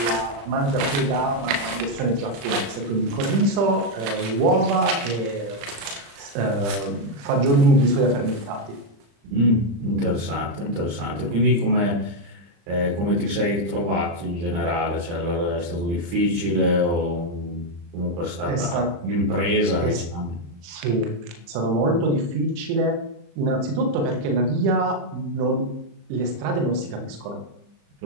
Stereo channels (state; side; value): late; left; 35 ms